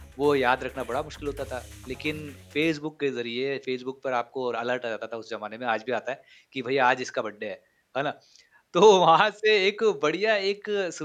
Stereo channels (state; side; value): identical; both; correlation 1.00